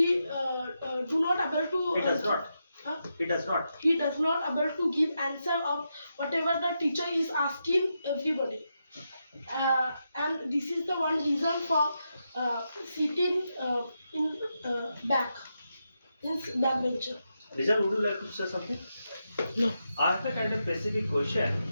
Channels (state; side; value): inverted; both; correlation -0.86